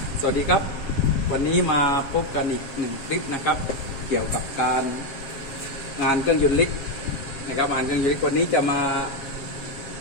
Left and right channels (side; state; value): right; late; 7.5 ms